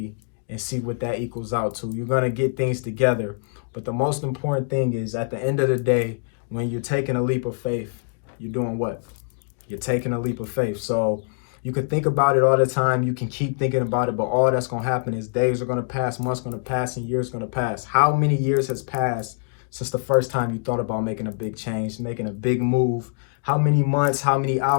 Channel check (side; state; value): right; silent; digital silence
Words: and see what that equals out to. You're going to get things together. But the most important thing is at the end of the day, when you're taking a leap of faith, you're doing what? You're taking a leap of faith. So you can think about it all the time. You can keep thinking about it, but all that's going to happen is days are going to pass, months going to pass, and years going to pass. How many years has passed since the first time you thought about making a big change, making a big move? How many months, how many